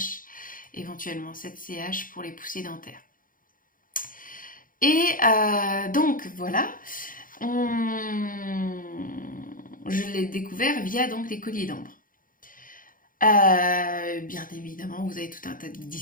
éventuellement 7 CH pour les poussées dentaires. Et donc voilà, je l'ai découvert via donc les colliers d'ambre. Bien évidemment, vous avez tout un tas de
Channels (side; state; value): right; late; 0.40 ms